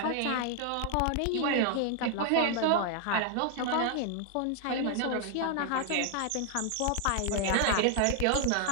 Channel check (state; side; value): different; both; correlation 0.00